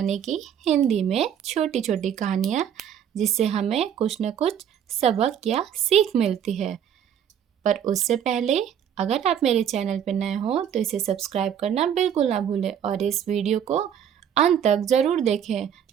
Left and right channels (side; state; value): left; quieter; 9.0 dB